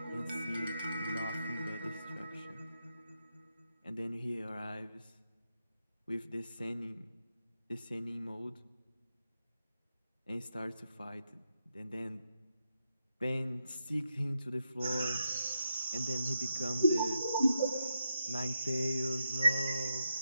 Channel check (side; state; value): both; inverted; correlation -0.85